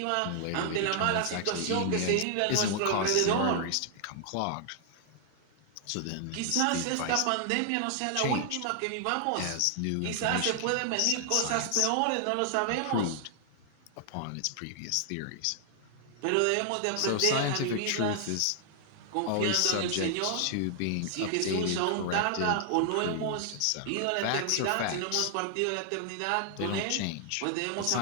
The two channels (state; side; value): different; both; correlation 0.00